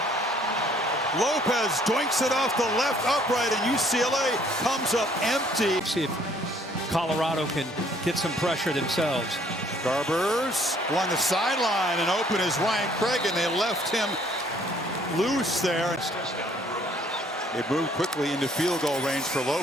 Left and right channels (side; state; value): both; normal; correlation 0.61